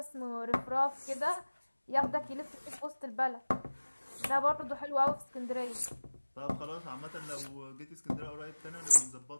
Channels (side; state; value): both; inverted; correlation -1.00